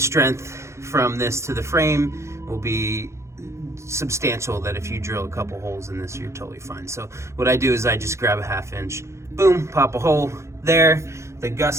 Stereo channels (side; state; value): left; late; 0.14 ms